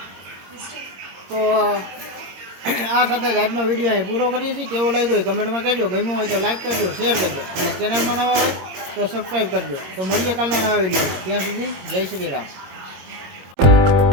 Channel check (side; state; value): left; late; 22 ms